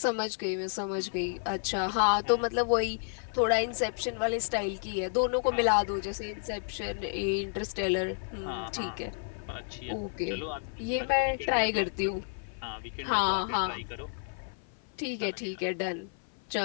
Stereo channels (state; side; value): silent; right; 55 dB below the other